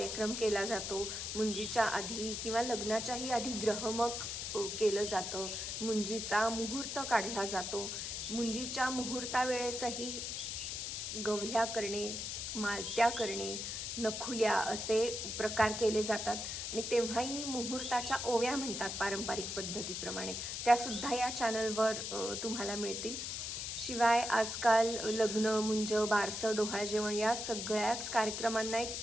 केला जातो. मुंजीच्या आधी किंवा लग्नाच्याही आधी ग्रहमक केलं जातं. मुंजीचा मुहूर्त काढला जातो. मुंजीच्या मुहूर्तावेळेसही गवल्या करणे, मालत्या करणे, नखुल्या असे प्रकार केले जातात आणि तेव्हाही मुहूर्ताच्या ओव्या म्हणतात पारंपरिक पद्धतीप्रमाणे. त्यासुद्धा या चॅनलवर तुम्हाला मिळतील. शिवाय आजकाल लग्न, मुंज, बारसं, डोहाळ जेवण या सगळ्याच कार्यक्रमांना एक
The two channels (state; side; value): noise; left; hiss, 4 dB below the sound